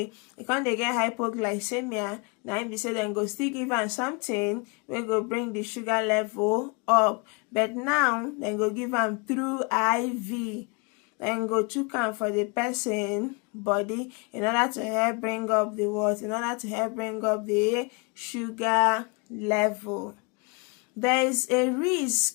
come dey get hypoglycemia, na im be say dem go still give am something wey go bring the sugar level up. But now dem go give am through IV. Dem go chook am for the person body in order to help bring up the what? In order to help bring up the sugar level. There is a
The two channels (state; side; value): quieter; right; 31.9 dB